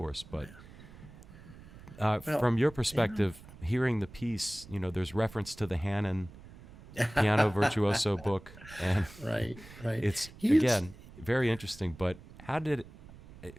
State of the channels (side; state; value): right; noise; rumble, 19 dB below the sound